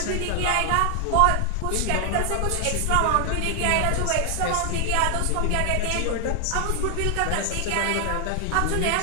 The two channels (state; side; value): different; both; correlation 0.00